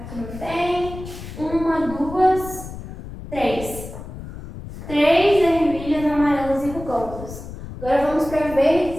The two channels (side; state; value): left; noise; rumble, 12 dB below the sound